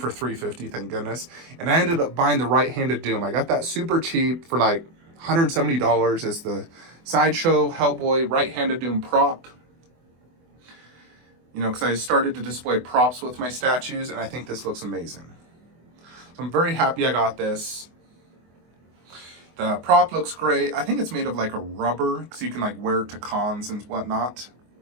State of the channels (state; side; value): late; left; 24 ms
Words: $350, thank goodness. And I ended up buying the right-handed Doom. I got that super cheap for like $170. It's the Sideshow Hellboy right-handed Doom prop. You know, because I started to display props with my statues, and I think this looks amazing. So I'm very happy I got this. The prop looks great. I think it's made of like a rubber, so you can like wear it to cons and whatnot.